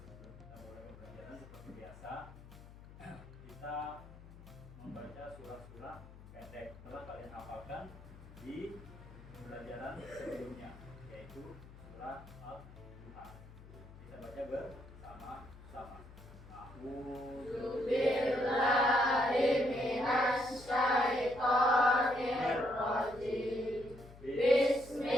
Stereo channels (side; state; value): left; noise; hum, 18 dB below the sound